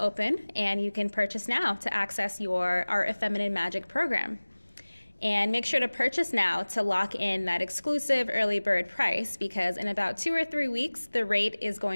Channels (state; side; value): inverted; both; correlation -1.00